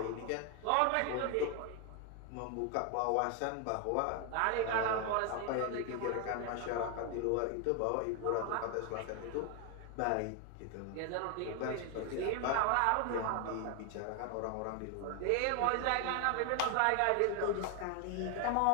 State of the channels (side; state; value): both; different; correlation 0.01